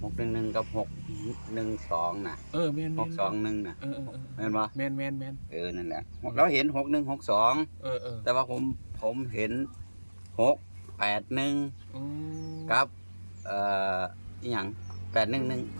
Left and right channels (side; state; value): both; inverted; correlation -1.00